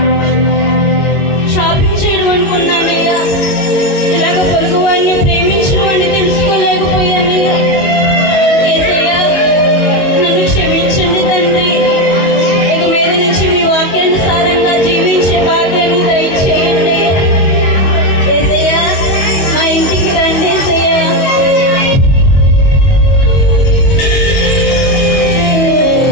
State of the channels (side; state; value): right; late; 21 ms